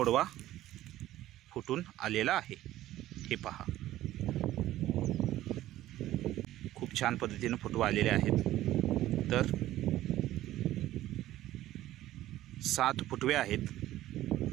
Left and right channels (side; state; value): left; quieter; 14.5 dB